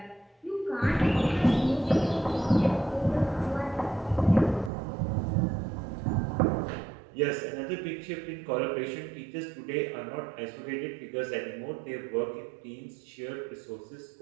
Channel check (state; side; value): drops out; left; at 4.7 s